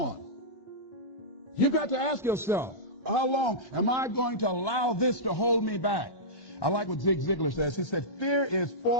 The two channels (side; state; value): right; late; 1.2 ms